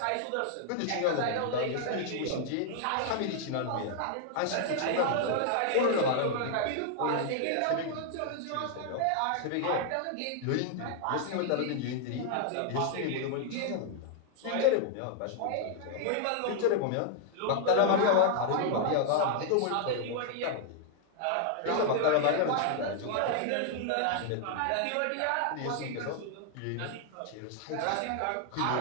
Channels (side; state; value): both; different; correlation -0.01